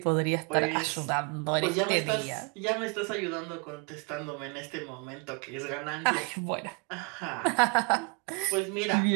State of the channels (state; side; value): quieter; left; 32.5 dB